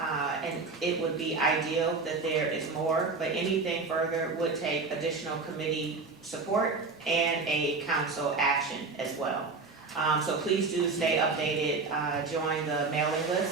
it would be ideal that there is more, but anything further would take additional committee support and a council action as well. So please do stay updated, join the mailing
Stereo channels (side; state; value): left; quieter; 4.1 dB